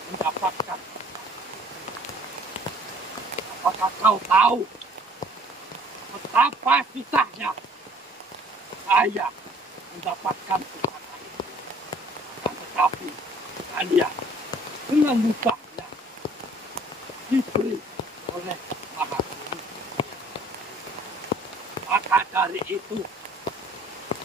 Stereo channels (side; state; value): both; normal; correlation 0.56